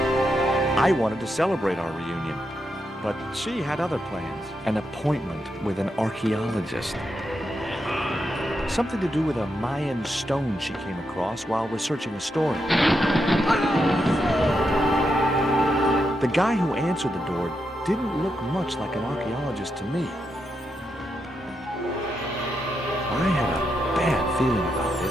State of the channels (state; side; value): normal; both; correlation 0.84